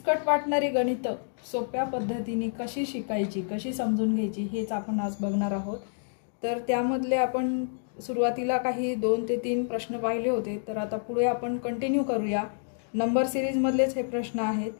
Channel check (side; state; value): right; silent; digital silence